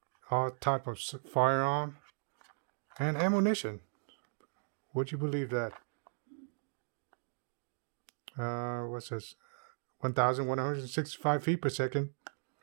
all type of firearm, and ammunition. Would you believe that? What's this? 1,165 feet per second.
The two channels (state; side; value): silent; left; digital silence